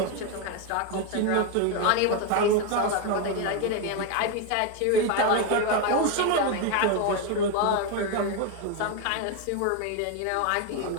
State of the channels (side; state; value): both; different; correlation 0.02